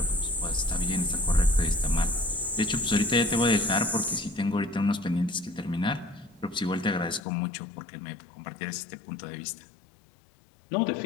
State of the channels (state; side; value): drops out; right; at 7.2 s